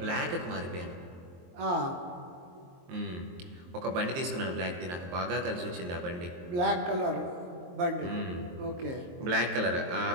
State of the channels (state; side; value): late; left; 23 ms